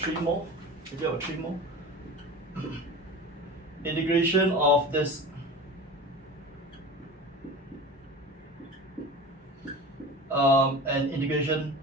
more. Maybe about 3 more. Integration of this. And integration.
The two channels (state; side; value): normal; both; correlation 0.34